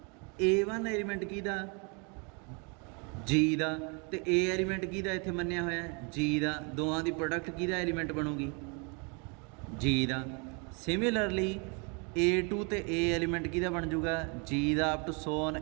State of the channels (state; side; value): quieter; left; 33.9 dB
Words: A1 ਐਲੀਮੈਂਟ ਕਿਹਦਾ? G ਦਾ, ਤੇ A ਐਲੀਮੈਂਟ ਕਿਹਦਾ ਇੱਥੇ ਮੰਨਿਆ ਹੋਇਆ? G ਦਾ। ਦੋਵਾਂ ਦੀ ਪ੍ਰੋਡਕਟ ਕਿਹਦਾ ਐਲੀਮੈਂਟ ਬਣੂਗੀ? G ਦਾ। ਸਿਮਿਲਰਲੀ A2 ਤੇ A ਐਲੀਮੈਂਟ ਕਿਹਦਾ ਬਣ ਜੂਗਾ? G ਦਾ। ਅਪ ਟੂ ਸੋਨ